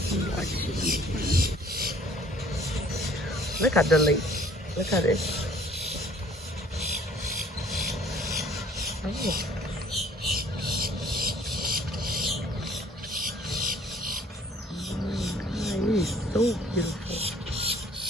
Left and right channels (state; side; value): normal; both; correlation 0.56